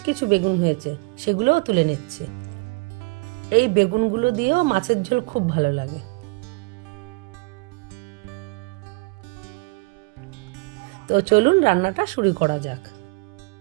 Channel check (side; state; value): left; quieter; 28.5 dB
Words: কিছু বেগুন হয়েছে, সেগুলোও তুলে নিচ্ছি। এই বেগুনগুলো দিয়েও মাছের ঝোল খুব ভালো লাগে। তো চলুন রান্নাটা শুরু করা যাক।